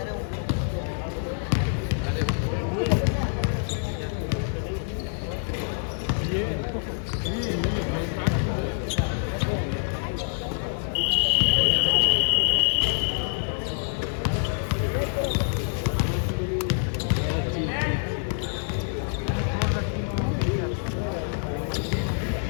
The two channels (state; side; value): silent; right; digital silence